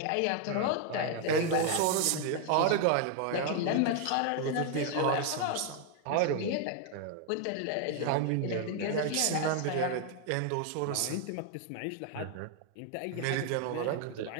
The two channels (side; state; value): both; different; correlation 0.00